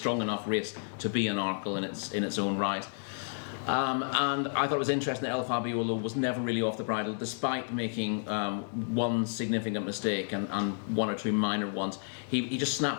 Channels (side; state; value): right; silent; digital silence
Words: enough race to be an Arkle in its own right. And I thought it was interesting that El Fabiolo was never really off the bridle, despite making one significant mistake and one or two minor ones. He just